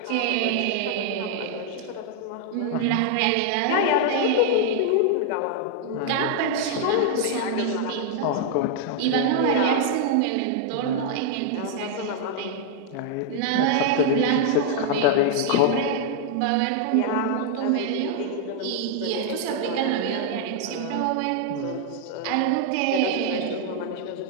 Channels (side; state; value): both; different; correlation 0.00